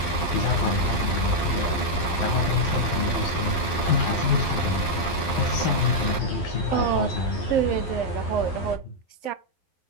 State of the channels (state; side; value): late; right; 11 ms